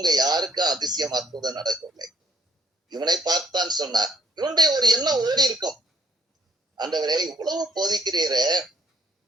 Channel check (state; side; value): normal; both; correlation 0.65